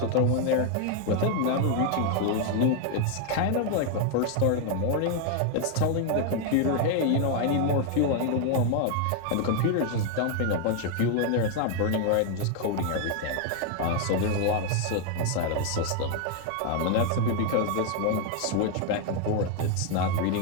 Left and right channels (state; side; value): different; both; correlation 0.01